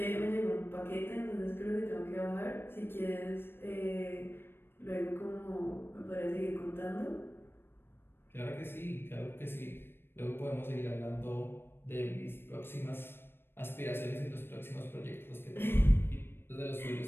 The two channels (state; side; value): late; right; 0.11 ms